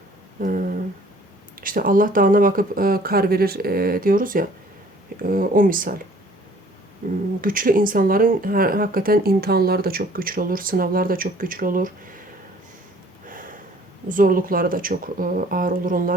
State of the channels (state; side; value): normal; both; correlation 0.55